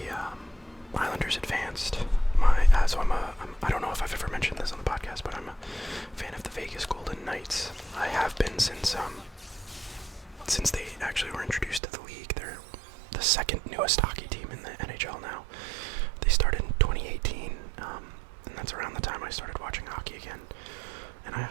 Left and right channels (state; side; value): drops out; left; at 11.8 s